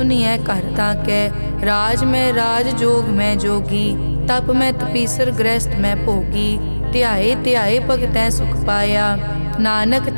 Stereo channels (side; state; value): both; inverted; correlation -1.00